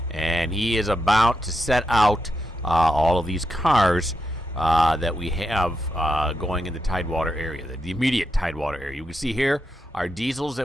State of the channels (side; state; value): both; normal; correlation 0.84